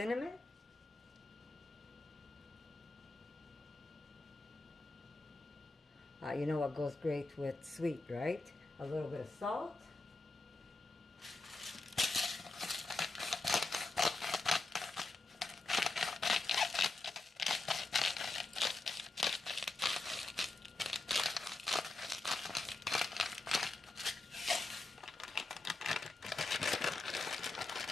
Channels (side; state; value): right; quieter; 3.2 dB